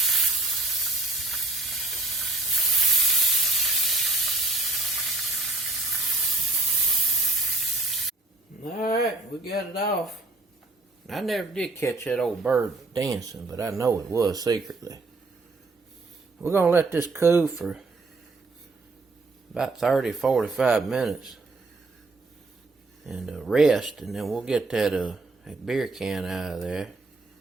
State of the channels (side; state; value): left; quieter; 3.1 dB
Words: Alright, we got it off. I never did catch that old bird dancing, but I know it was secretly. We're going to let this cool for about 30-45 minutes and rest, and then we'll get that beer can out of there.